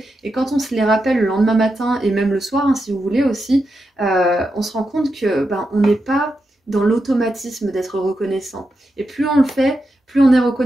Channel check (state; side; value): normal; both; correlation 0.87